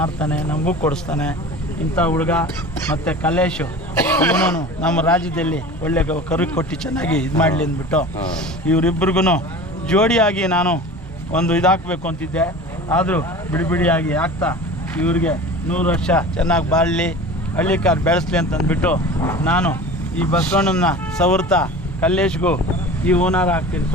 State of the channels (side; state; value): both; normal; correlation 0.37